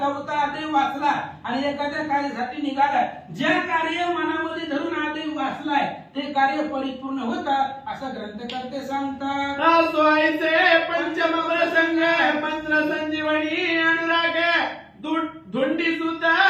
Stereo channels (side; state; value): both; identical; correlation 1.00